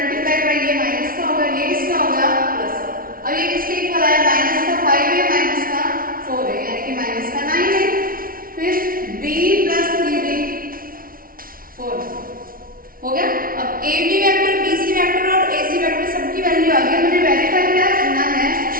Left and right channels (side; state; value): left; late; 0.42 ms